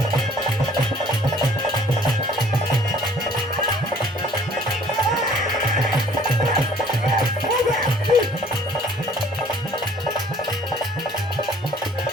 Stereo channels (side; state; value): both; normal; correlation 0.55